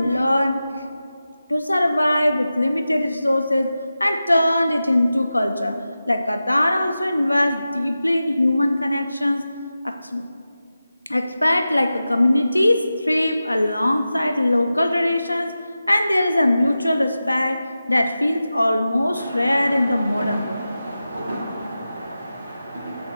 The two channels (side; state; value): both; inverted; correlation -0.93